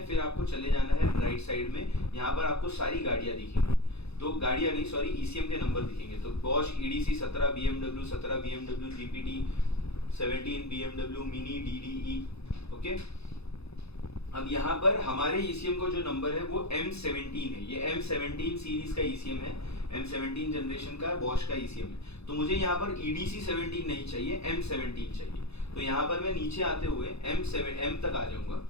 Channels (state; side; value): late; right; 0.79 ms